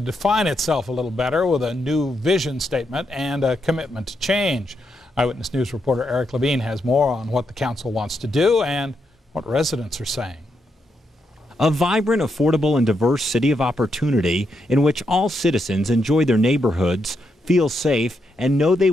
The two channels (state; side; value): normal; both; correlation 0.81